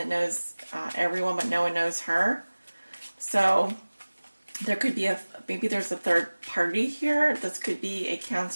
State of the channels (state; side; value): inverted; both; correlation -1.00